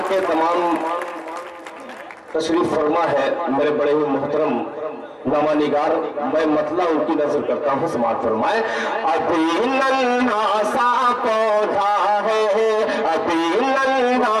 के तमाम तशरीफ फरमा है मेरे बड़े ही मोहतरम नामा निगार, मैं मतला उनकी नजर करता हूँ, समाज फरमाए। अभी नन्हा सा पौधा है, अभी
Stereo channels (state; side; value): identical; both; correlation 1.00